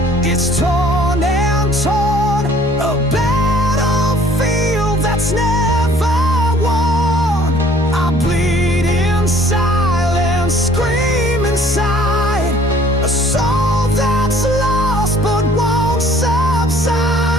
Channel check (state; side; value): normal; both; correlation 0.56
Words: it's torn and torn, a battlefield that's never won. I bleed in silence, scream inside, a soul that's lost but won't